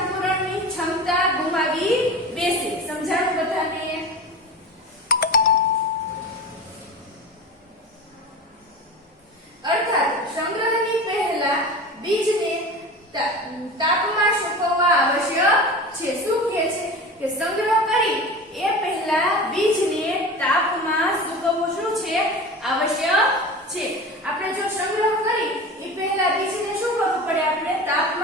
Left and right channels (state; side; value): normal; both; correlation 0.32